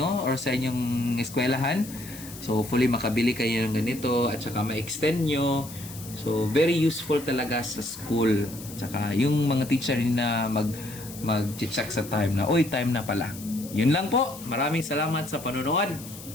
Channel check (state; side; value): noise; left; hiss, 15 dB below the sound